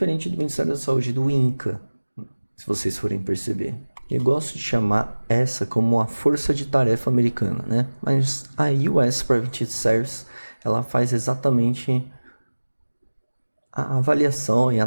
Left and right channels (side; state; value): both; inverted; correlation -1.00